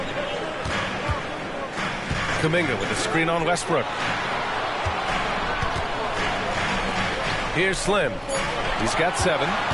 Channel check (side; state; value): both; identical; correlation 1.00